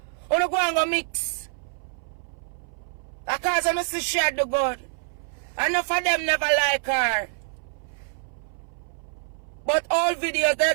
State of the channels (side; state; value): left; silent; 60 dB below the other